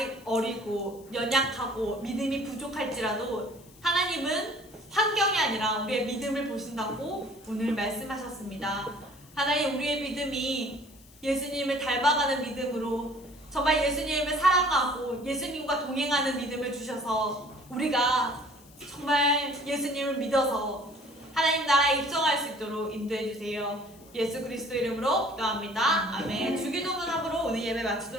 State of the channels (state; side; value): noise; left; hiss, 25 dB below the sound